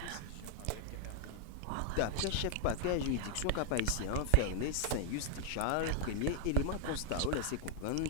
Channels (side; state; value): both; different; correlation 0.00